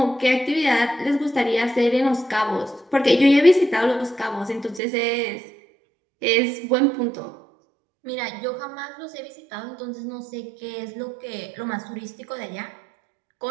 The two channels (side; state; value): left; drops out; at 4.8 s